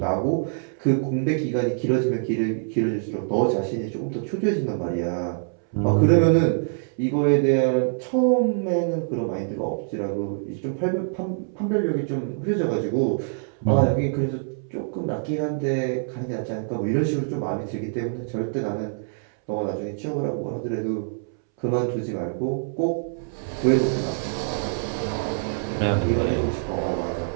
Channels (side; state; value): left; silent; 62 dB below the other